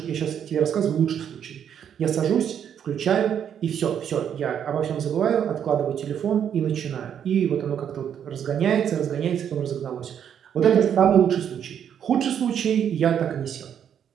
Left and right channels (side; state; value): left; quieter; 8.8 dB